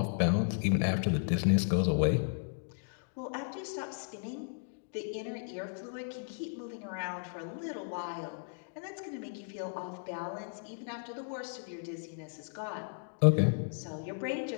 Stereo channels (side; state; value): right; silent; digital silence